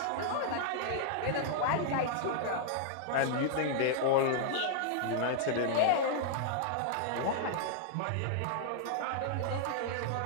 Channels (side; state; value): both; different; correlation -0.01